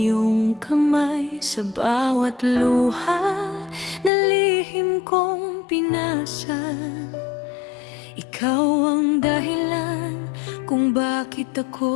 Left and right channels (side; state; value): right; drops out; at 4.1 s